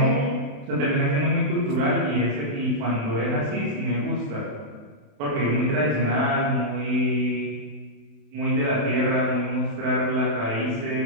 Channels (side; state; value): left; late; 28 ms